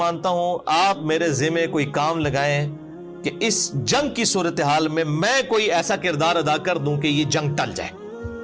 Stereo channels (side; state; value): both; identical; correlation 1.00